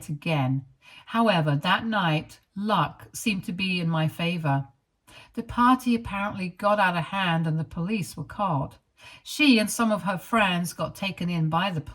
again. However, that night, luck seemed to be in my favor. The party apparently got out of hand and the police were called. She and some of her friends got taken in by the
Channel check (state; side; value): identical; both; correlation 1.00